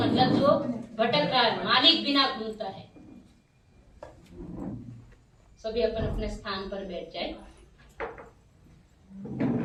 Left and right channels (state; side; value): identical; both; correlation 1.00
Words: जो भटक रहा है, मालिक बिना घूमता है। सभी अपन अपने स्थान पर बैठ जाए।